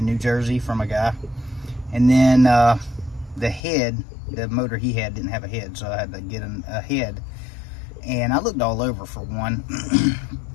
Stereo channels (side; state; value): right; drops out; at 3.6 s